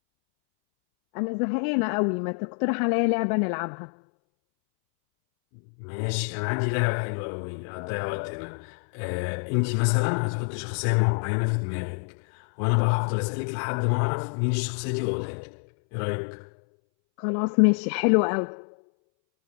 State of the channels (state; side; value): silent; right; 61 dB below the other